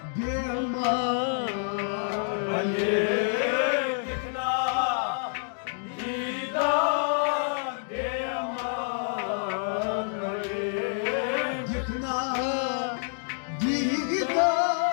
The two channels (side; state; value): right; silent; digital silence